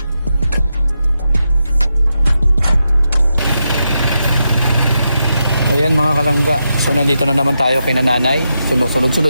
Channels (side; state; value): both; inverted; correlation -0.86